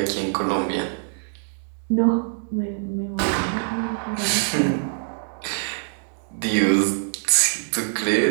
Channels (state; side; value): silent; left; digital silence